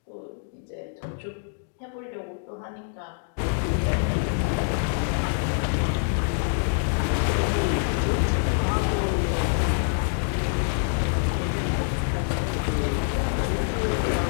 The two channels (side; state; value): right; silent; digital silence